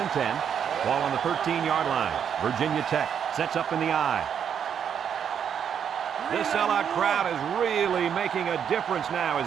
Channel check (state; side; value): quieter; left; 8.1 dB